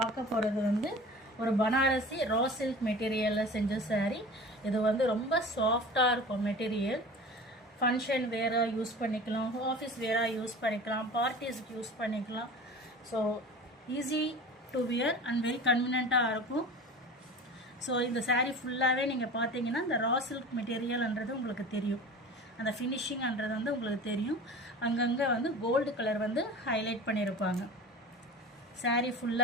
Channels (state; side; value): normal; both; correlation 0.37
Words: போகிறது வந்து ஒரு பனாரசி ரா சில்க் மெட்டீரியலில் செஞ்ச saree. இது வந்து ரொம்ப சாஃப்டாக இருக்கும் மெட்டீரியல். ஃபங்க்ஷன் வேராக யூஸ் பண்ணிக்கலாம், ஆஃபீஸ் வேராக யூஸ் பண்ணிக்கலாம், பார்ட்டிஸ்க்கு யூஸ் பண்ணிக்கலாம். So easy to wear and very கன்வீனியண்ட்டாக இருக்கும். ஸோ இந்த saree ஃபுல்லாகவே நீங்கள் பார்த்தீங்கன்னா இந்த ரா சில்க் மெட்டீரியல்ன்றது உங்களுக்கு தெரியும், அந்த ஃபினிஷிங்ன்றது வந்து உங்களுக்கு தெரியும். அங்கங்கே வந்து கோல்டு கலர் வந்து ஹைலைட் பண்ணியிருப்பாங்க. saree